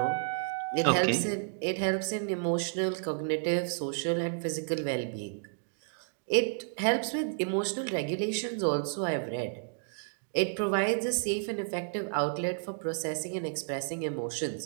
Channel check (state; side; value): silent; left; digital silence